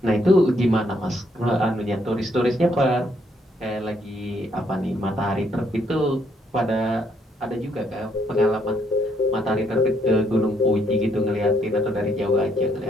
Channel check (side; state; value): both; normal; correlation 0.71